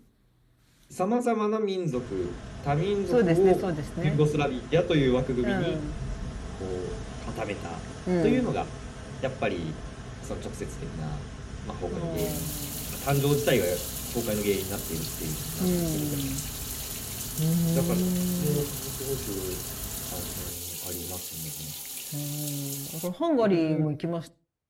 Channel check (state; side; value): identical; both; correlation 1.00